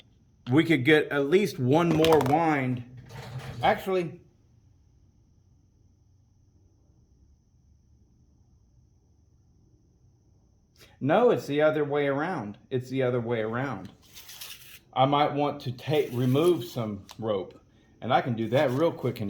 we could get at least one more wind. Actually, no, it's the other way around. It's the other way around. I might want to remove some rope, and I can do that real quick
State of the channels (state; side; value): identical; both; correlation 1.00